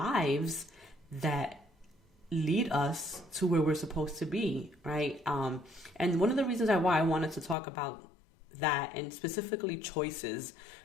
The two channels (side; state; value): right; drops out; at 7.6 s